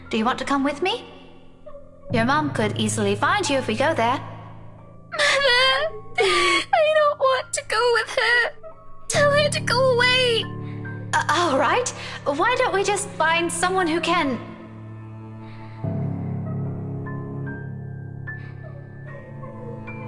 Do you want to come with me? Your mom could easily find you if we go there. Mother! I don't want to go with her! Tell her to go away! All right. Why don't we just find someone who can...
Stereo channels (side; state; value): both; identical; correlation 1.00